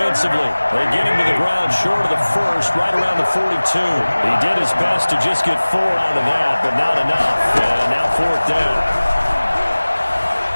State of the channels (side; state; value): both; inverted; correlation -1.00